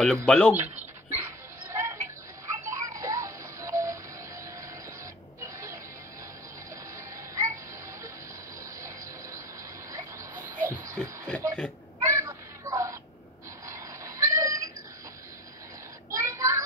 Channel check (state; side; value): normal; both; correlation 0.36